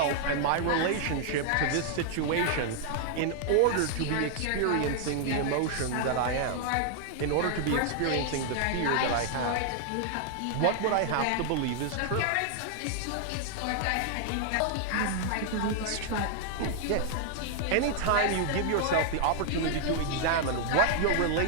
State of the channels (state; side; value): different; both; correlation 0.00